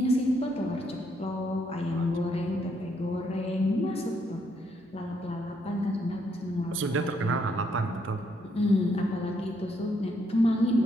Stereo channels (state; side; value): normal; both; correlation 0.74